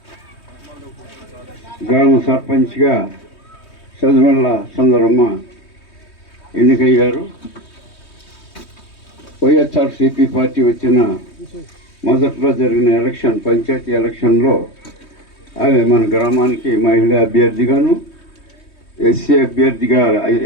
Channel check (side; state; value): right; late; 3.2 ms